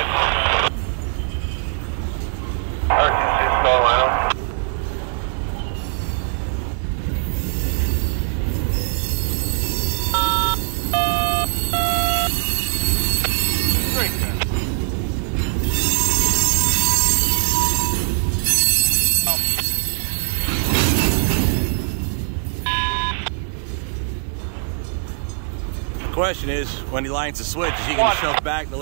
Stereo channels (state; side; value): silent; left; digital silence